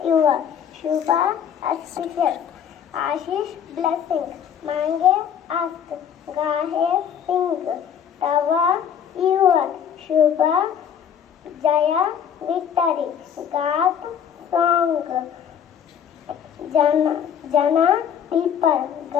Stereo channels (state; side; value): quieter; right; 8.4 dB